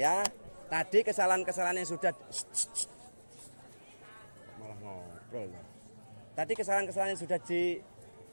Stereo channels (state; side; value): inverted; both; correlation -1.00